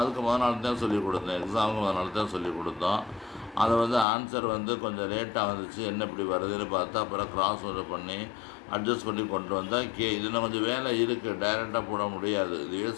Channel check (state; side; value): drops out; right; at 4.0 s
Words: முதல் நாள் தான் சொல்லிக் கொடுத்தோம், எக்ஸாமுக்கு முதல் நாள் தான் சொல்லிக் கொடுத்தோம். அதை வந்து ஆன்சர் வந்து கொஞ்சம் லேட்டாக வந்துச்சு, என்ன இப்படி வருதுன்னு பார்த்து அப்புறம் கிராஸ் ஓவர் பண்ணி அட்ஜஸ்ட் பண்ணி கொண்டு வந்தால் இதில் கொஞ்சம் வேலை இருக்குது, டைரெக்டாக போட முடியாது. இதுவே